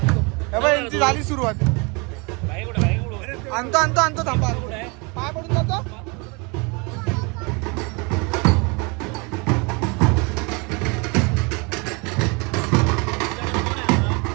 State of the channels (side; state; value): left; quieter; 30.0 dB